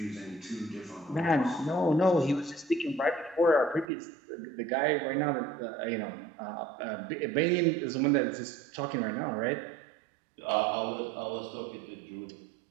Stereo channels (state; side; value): drops out; left; at 3.9 s